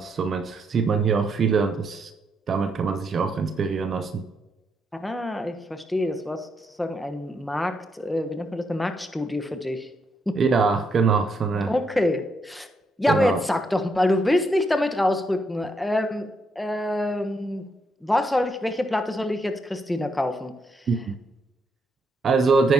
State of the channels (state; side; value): normal; both; correlation 0.78